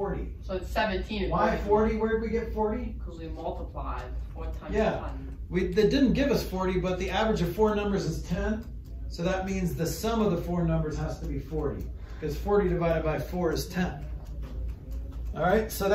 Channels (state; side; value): identical; both; correlation 1.00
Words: So it's 17. Why 40? Where did we get 40? Because we multiplied 4 times Yeah. 1. They didn't give us 40, but the average of 4 numbers is 10. So that means the sum of the 4 numbers has to be 40, because 40 divided by 4 is 10. All right, so